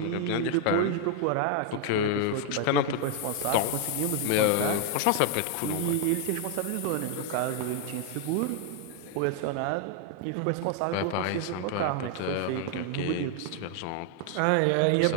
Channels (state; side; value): different; both; correlation 0.00